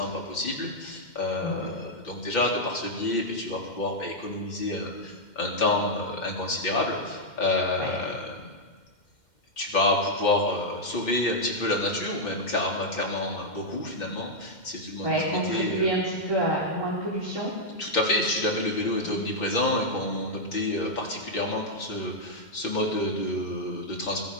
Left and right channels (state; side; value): late; right; 2.1 ms